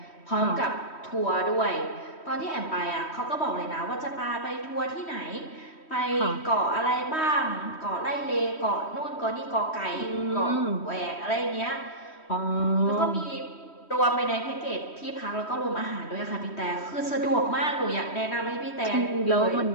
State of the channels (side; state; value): right; late; 3.1 ms